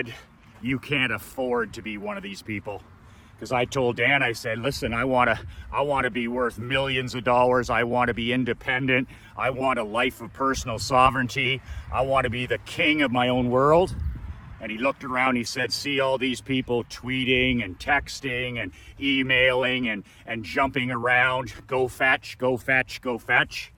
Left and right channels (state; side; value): identical; both; correlation 1.00